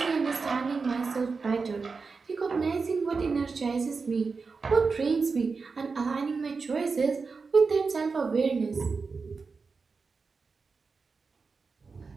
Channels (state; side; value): quieter; left; 4.7 dB